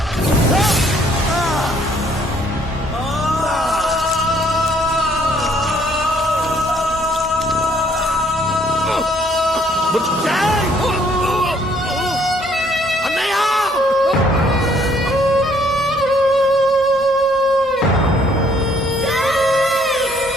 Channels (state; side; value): normal; both; correlation 0.64